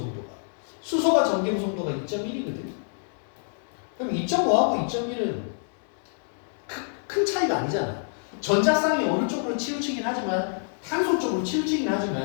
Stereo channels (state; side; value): silent; right; digital silence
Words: 수소가 전기음성도가 2.1이거든. 그럼 2.5하고 2.1은 큰 차이가 아니잖아. 전자쌍이 어느 쪽으로 치우치긴 하지만 탄소 쪽으로 치우치긴